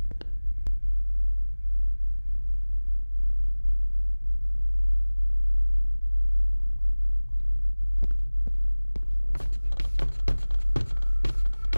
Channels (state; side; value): inverted; both; correlation -1.00